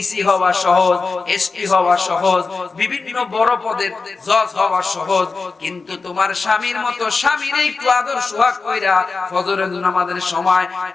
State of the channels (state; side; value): quieter; right; 4.3 dB